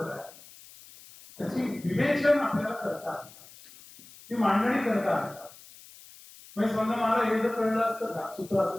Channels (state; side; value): noise; left; hiss, 21 dB below the sound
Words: आहे. त्याची विवेचन आपल्याला करता आलं पाहिजे, ती मांडणी करता आली पाहिजे. म्हणजे समजा मला हे जर कळलं असतं का सूत्र असं